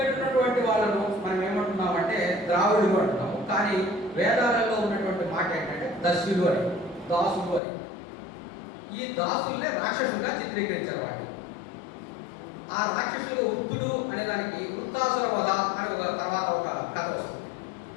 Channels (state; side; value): drops out; right; at 7.6 s